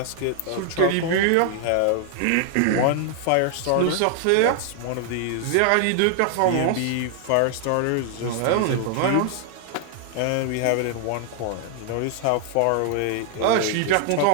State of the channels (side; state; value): both; different; correlation 0.00